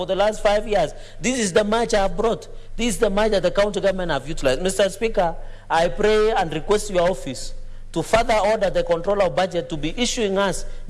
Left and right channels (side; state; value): both; identical; correlation 1.00